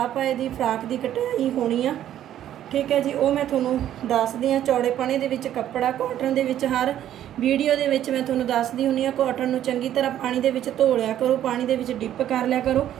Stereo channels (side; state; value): left; quieter; 11.5 dB